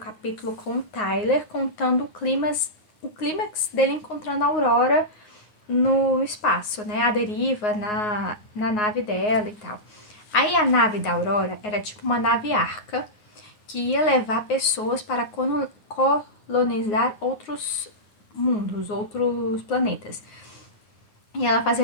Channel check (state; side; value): late; right; 9.5 ms